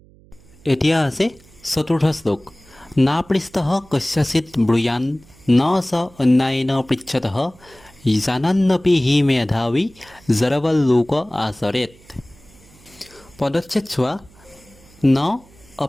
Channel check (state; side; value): noise; right; hum, 26 dB below the sound